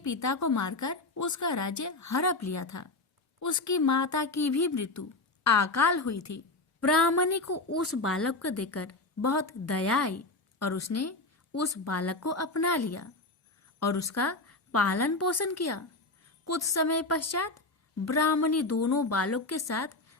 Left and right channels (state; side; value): quieter; right; 3.2 dB